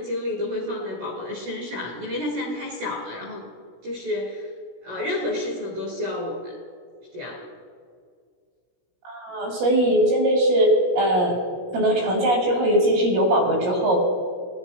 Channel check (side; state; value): left; late; 16 ms